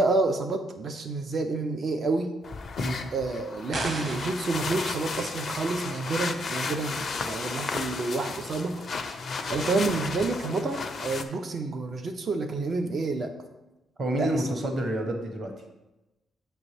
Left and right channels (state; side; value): normal; both; correlation 0.74